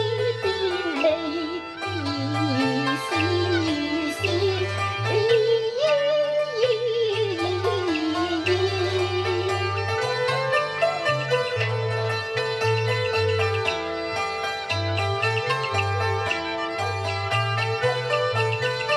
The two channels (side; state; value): both; identical; correlation 1.00